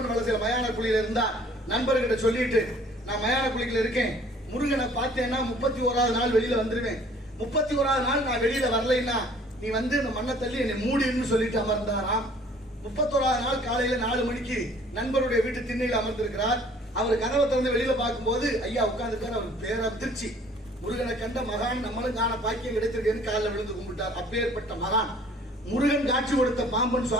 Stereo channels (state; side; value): normal; both; correlation 0.55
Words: வலசில மயான குழியில இருந்தா நண்பர்கிட்ட சொல்லிட்டு நான் மயான குழியில இருக்கேன், முருகனை பார்த்தேன்னா 31வது நாள் வெளியில வந்துருவேன், 31வது நாள் நான் வெளியில வரலைன்னா நீ வந்து இந்த மண்ணை தள்ளி என்னை மூடின்னு சொல்லிட்டு அமர்ந்தாராம். 31வது நாள் காலையில 4 மணிக்கு நண்பருடைய வீட்டு திண்ணையில் அமர்ந்திருக்கிறார். அவர் கதவை திறந்து வெளியில பார்க்கும்போது ஐயா உட்கார்ந்துருக்காரு. அவருக்கு பேரதிர்ச்சி. முருகனை கண்ட மகான் நம்மளும் காண பாக்கியம் கிடைத்திருக்கேன்னு காலில் விழுந்து கும்பிட்டார். அப்பேற்பட்ட மகான் முருகன் காட்சி கொடுத்த பாம்பன்